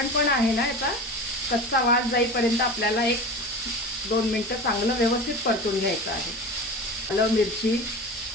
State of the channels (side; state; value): both; normal; correlation 0.32